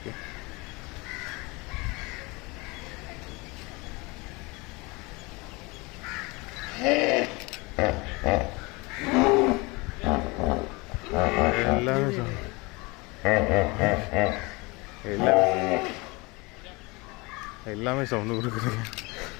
எல்லாமே சவுண்டு கொடுக்குது.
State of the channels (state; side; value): quieter; right; 25.7 dB